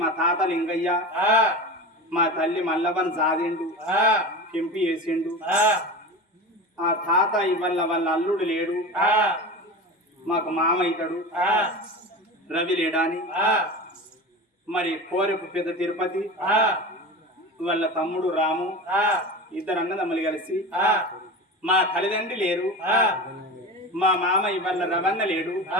మా తాత లింగయ్య, మా తల్లి మల్లవన్ జాదిండు, కెంపి వేసిండు. ఆ తాత ఇవల్ల వాళ్ళ అల్లుడు లేడు, మాకు మామ అవుతాడు, రవి లేడాని. మరి కోరెపు పెద్ద తిరుపతి వాళ్ళ తమ్ముడు రాము, ఇద్దరు అన్నదమ్ములు కలిసి మా తల్లిదండ్రి లేరు, మా మామ ఇవాళ రవన్న లేడు,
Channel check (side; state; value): both; normal; correlation 0.28